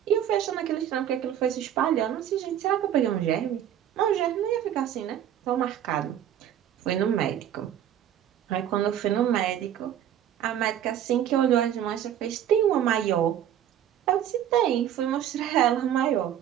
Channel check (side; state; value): left; quieter; 10.4 dB